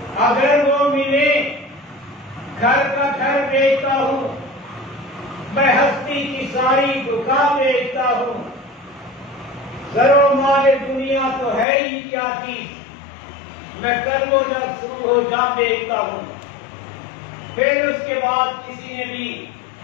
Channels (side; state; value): right; drops out; at 11.7 s